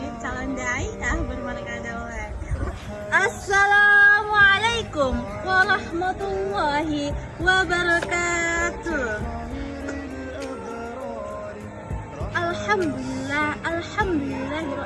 calon daiyah bermarga Daulat. Assalamualaikum warahmatullahi wabarakatuh.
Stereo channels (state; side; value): identical; both; correlation 1.00